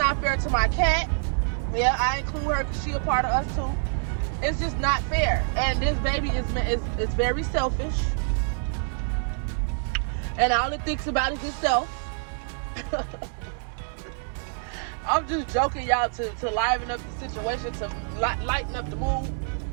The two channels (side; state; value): left; silent; 59 dB below the other